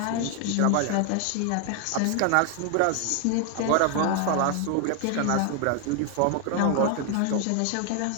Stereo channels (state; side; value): different; both; correlation 0.00